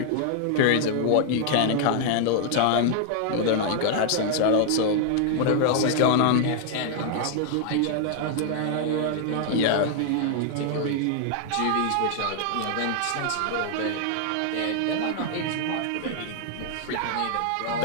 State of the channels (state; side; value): different; both; correlation 0.00